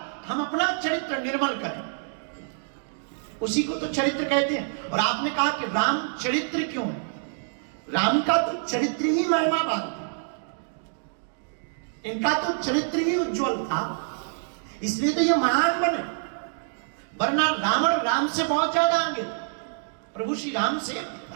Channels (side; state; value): left; silent; digital silence